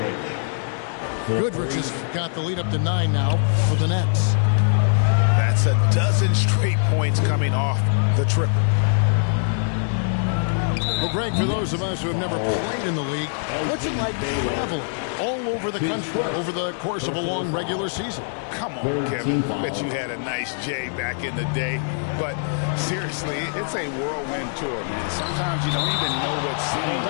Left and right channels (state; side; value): silent; right; digital silence